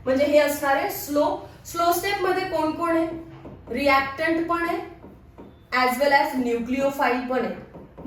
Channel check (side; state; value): both; identical; correlation 1.00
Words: म्हणजे हे असणार आहे स्लो स्टेप मध्ये कोण कोण आहे? रिएक्टंट पण आहे ऍज वेल ऍज न्यूक्लिओफाईल पण आहे,